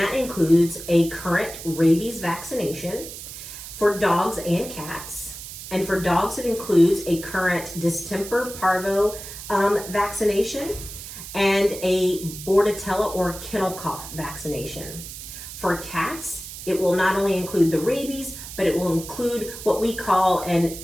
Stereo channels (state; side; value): noise; right; hiss, 11 dB below the sound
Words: includes a current rabies vaccination for dogs and cats. And for dogs, it includes a current distemper parvo vaccination and a bordetella or kennel cough vaccination. For cats, it will not only include the rabies, but it will include what we call an